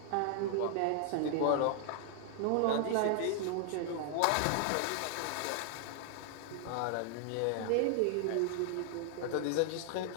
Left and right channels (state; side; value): different; both; correlation 0.00